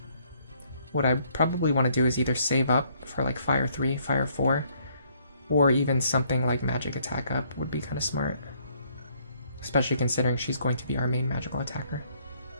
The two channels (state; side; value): inverted; both; correlation -0.66